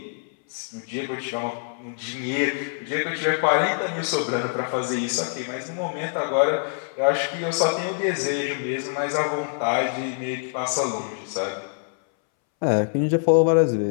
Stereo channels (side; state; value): right; silent; 62 dB below the other